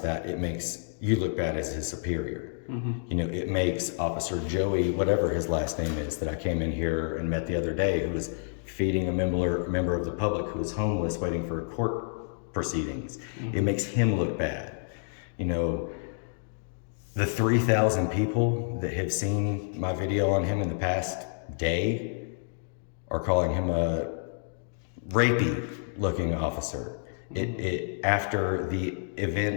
it makes you look bad as his superior. You know, it makes Officer Joey, whatever his last name is, that I came in here and met the other day, who was feeding a member of the public who was homeless waiting for court proceedings. It makes him look bad. You know, the 3,000 people that have seen my video on him in the past day are calling him a rapey looking officer. After the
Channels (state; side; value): silent; right; digital silence